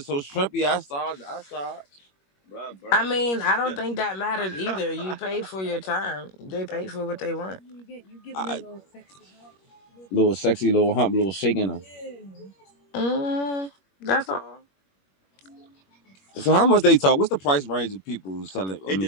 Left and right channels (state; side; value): late; right; 21 ms